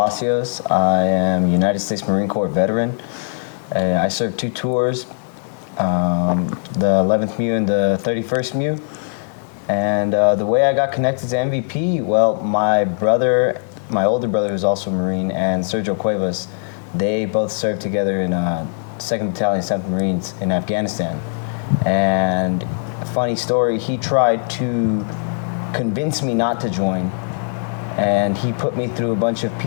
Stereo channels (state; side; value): silent; right; 66 dB below the other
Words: I am a United States Marine Corps veteran. I served 2 tours, the 11th MEU and the 31st MEU. And the way I got connected to MVP, well, my older brother, who's also a Marine, and Sergio Cuevas, they both served together in 2nd Battalion, 7th Marines in Afghanistan. And funny story, he tried to convince me not to join. And he put me through a bunch of